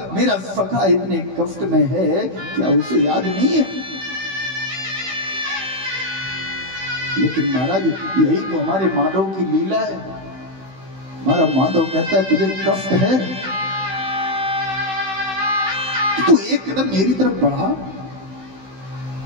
मेरा सखा इतने कष्ट में है? क्या उसे याद नहीं है? लेकिन महाराज, यही तो हमारे माधव की लीला है। हमारा माधव कहता है तुझे कष्ट है तो एक कदम मेरी तरफ बढ़ा,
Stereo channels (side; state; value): left; late; 16 ms